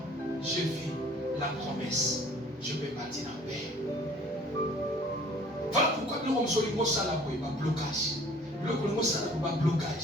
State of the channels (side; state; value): both; normal; correlation 0.53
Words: je vis la promesse. Je peux partir en paix. Voilà pourquoi nous sommes sur le mot salabo et pas blocage. Le mot salabo pas